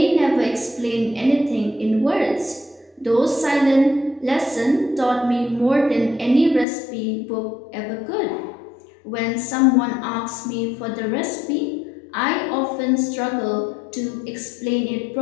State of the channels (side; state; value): right; drops out; at 6.7 s